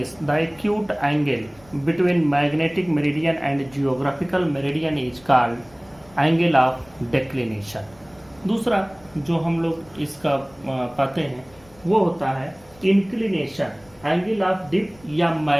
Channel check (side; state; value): left; noise; rumble, 27 dB below the sound